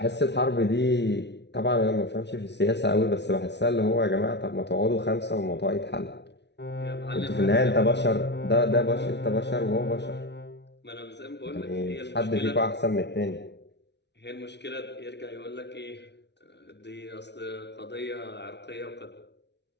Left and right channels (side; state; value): right; late; 0.50 ms